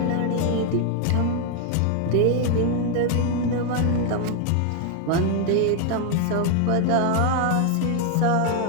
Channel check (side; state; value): both; different; correlation 0.00